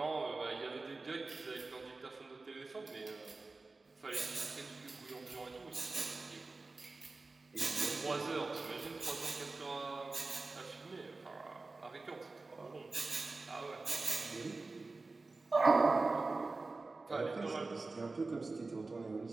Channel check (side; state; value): left; quieter; 3.6 dB